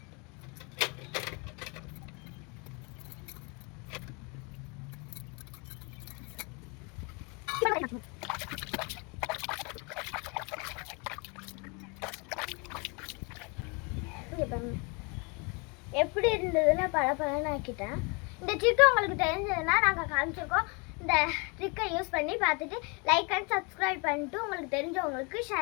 எப்படி இருந்ததுன்னு பழப்பழன்னு ஆக்கிட்டேன். இந்த ட்ரிக் உங்களுக்கு தெரிஞ்சதுன்னா நாங்கள் காமிச்சிருக்கோம். இந்த ட்ரிக்கை யூஸ் பண்ணி பார்த்துட்டு லைக் அண்ட் சப்ஸ்கிரைப் பண்ணிட்டு உங்களுக்கு தெரிஞ்சவங்களுக்கு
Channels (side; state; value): right; quieter; 31.5 dB